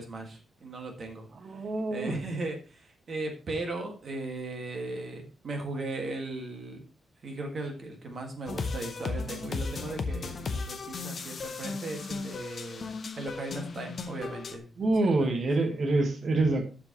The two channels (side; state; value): both; normal; correlation 0.82